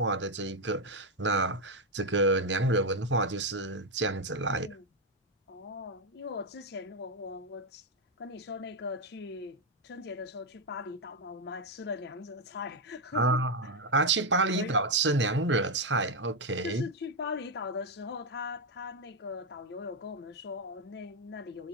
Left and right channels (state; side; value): normal; both; correlation 0.03